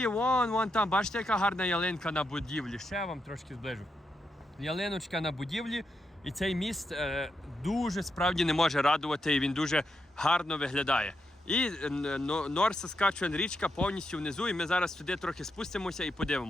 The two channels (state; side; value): normal; both; correlation 0.83